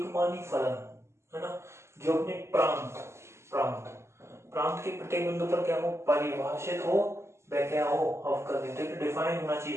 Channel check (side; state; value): left; late; 0.13 ms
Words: मानी फलन, है ना, जो अपने प्रांत प्रांत प्रांत के प्रत्येक बिंदु पर क्या हो, परिभाषित हो, वह क्या हो, अवकलनीय, डिफाइन होना